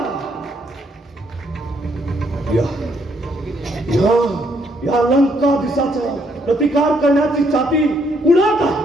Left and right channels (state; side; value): normal; both; correlation 0.71